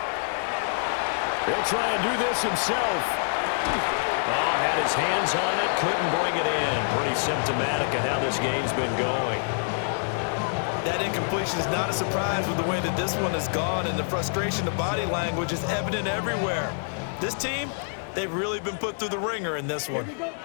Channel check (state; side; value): silent; right; digital silence